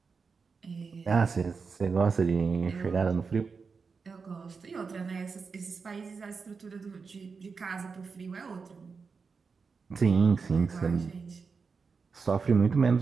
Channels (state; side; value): quieter; left; 5.1 dB